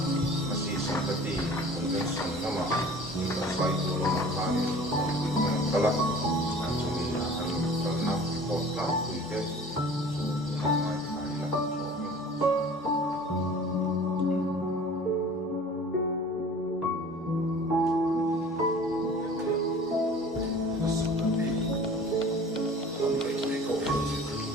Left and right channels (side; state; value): both; normal; correlation 0.45